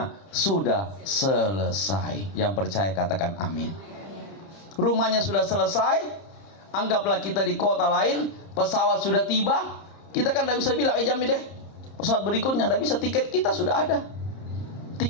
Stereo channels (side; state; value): right; late; 30 ms